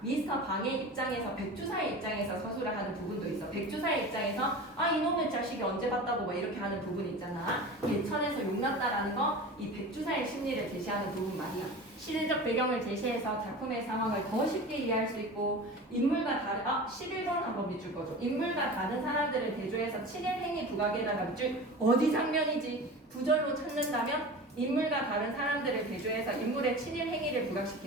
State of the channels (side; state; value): both; normal; correlation 0.34